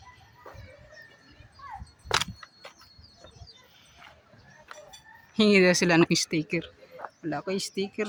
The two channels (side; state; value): both; identical; correlation 1.00